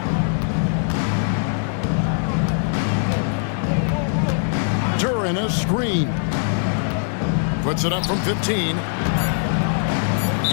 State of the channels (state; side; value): silent; right; digital silence